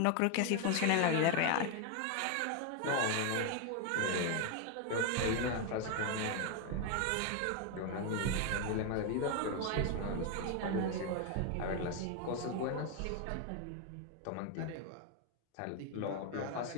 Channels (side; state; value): both; different; correlation 0.01